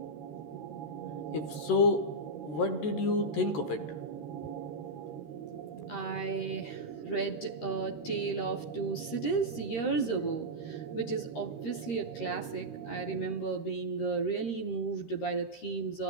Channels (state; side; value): late; right; 13 ms